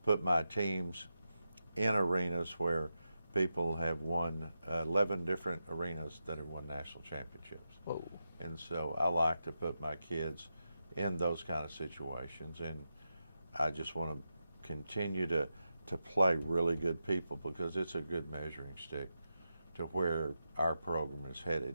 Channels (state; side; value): inverted; both; correlation -0.88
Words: put my teams in arenas where people have won 11 different arenas that have won national championships. Whoa. And so I like to put my kids in those kind of situations, and I just want to continue to play really good people, because it's a good measuring stick to where our program is